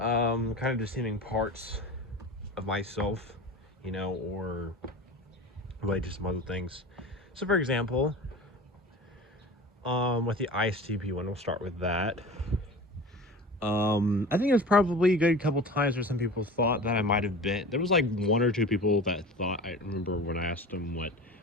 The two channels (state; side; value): normal; both; correlation 0.35